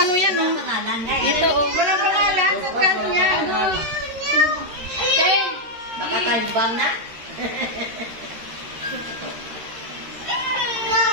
yan, oh. Pangalan nga eh. Ito oh. Walang pangalan. Sa kano yan? Okay. Baka kalbang na.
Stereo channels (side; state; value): left; late; 13 ms